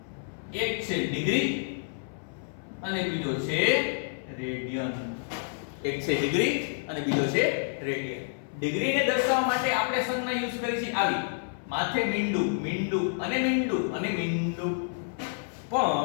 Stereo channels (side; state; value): right; silent; 59 dB below the other